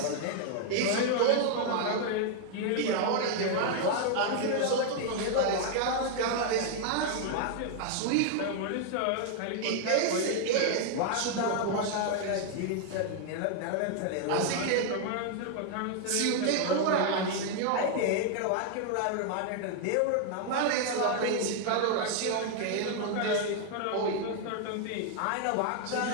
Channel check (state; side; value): different; both; correlation 0.00